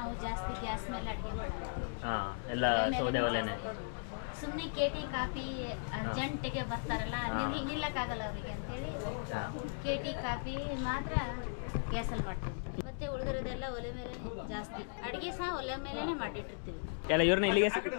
ಜಾಸ್ತಿ ಗ್ಯಾಸ್ ಮೇಲೆ ಅಡಿಗೆ ಮಾಡೋದು. ಎಲ್ಲ ಸೌದೆ ಒಲೆನೇ. ಸುಮ್ಮನೆ ಕೇಟಿ ಕಾಫಿ ಅರ್ಜೆಂಟಿಗೆ ಬರ್ತಾರಲ್ಲ, ನಿಲ್ಲಕ್ಕಾಗಲ್ಲ ಅವರಿಗೆ ಅಂತೇಳಿ ಕೇಟಿ ಕಾಫಿ ಮಾತ್ರ ಗ್ಯಾಸಲ್ಲಿ ಮಾಡ್ತೀವಿ. ಮತ್ತೆ ಉಳಿದಿರೋದೆಲ್ಲ ಒಲೆ ಮೇಲೆ ಜಾಸ್ತಿ. ಅಡಿಗೆ ಸಹ ಒಲೆ ಮೇಲೆನೆ ಮಾಡಿಟ್ಟಿರ್ತೀವಿ. ಎಲ್ಲ ಇವ್ರನ್ನ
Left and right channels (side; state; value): right; silent; digital silence